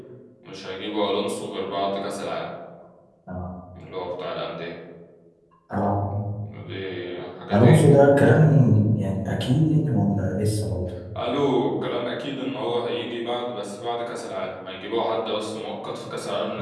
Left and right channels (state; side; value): identical; both; correlation 1.00